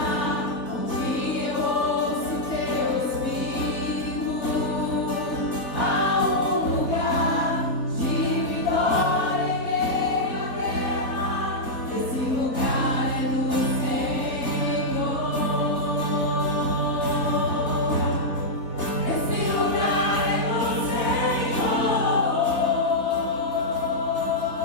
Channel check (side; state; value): right; late; 3.3 ms